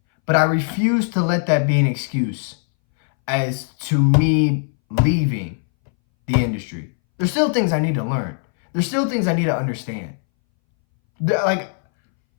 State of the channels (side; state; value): right; silent; 63 dB below the other